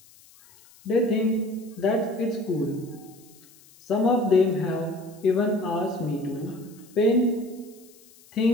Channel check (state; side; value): noise; left; hiss, 26 dB below the sound